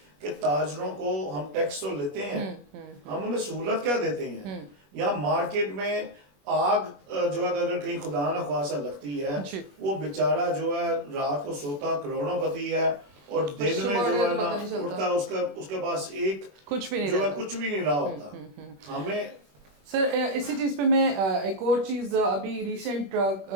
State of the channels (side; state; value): left; late; 21 ms